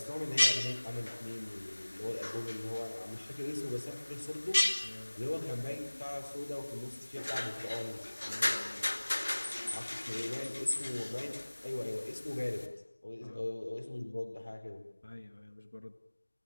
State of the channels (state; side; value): inverted; both; correlation -1.00